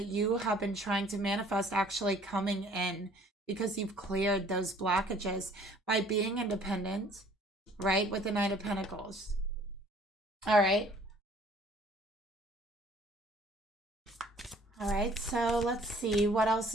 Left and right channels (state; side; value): normal; both; correlation 0.55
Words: you have been trying to manifest actually coming in, because you've cleared those blockages by being independent, right? With the Nine of Pentacles. All right. All right, so let's see what else